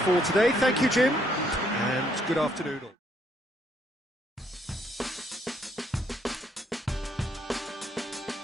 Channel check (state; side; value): normal; both; correlation 0.71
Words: for today. Thank you, Jim, and good afternoon all.